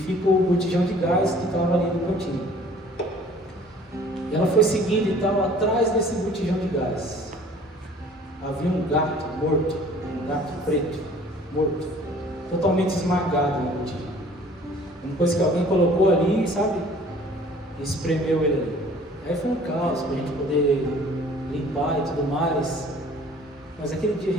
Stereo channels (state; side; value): normal; both; correlation 0.52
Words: o botijão de gás que estava ali no cantinho. E ela foi seguindo e tal, atrás desse botijão de gás havia um gato morto, um gato preto, morto, totalmente esmagado no botijão. Uma coisa que alguém colocou ali, sabe? E espremeu ele ali. Aí foi um caos para a gente poder limpar e tudo mais. Mas aquele dia a